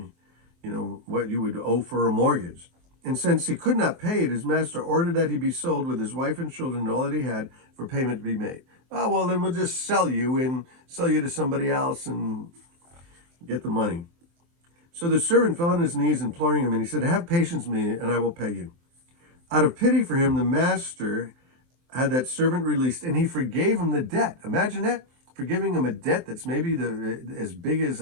what you would owe for a mortgage. And since he could not pay it, his master ordered that he be sold with his wife and children and all that he had for payment to be made. Oh, well, then we'll just sell you to somebody else and get the money. So the servant fell on his knees imploring him, and he said, have patience with me and I will pay you. Out of pity for him, the master had that servant released, and he forgave him the debt. Imagine that, forgiving him a debt that's maybe as big as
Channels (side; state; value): left; late; 23 ms